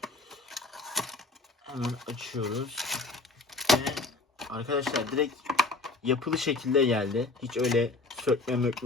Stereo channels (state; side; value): quieter; right; 3.5 dB